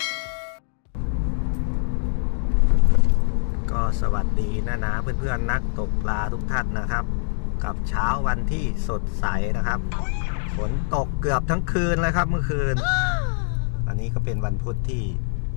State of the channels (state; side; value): silent; right; digital silence